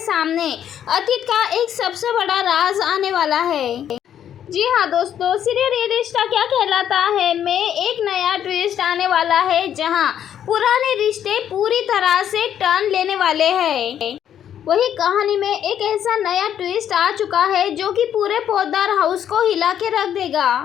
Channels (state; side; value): quieter; right; 9.8 dB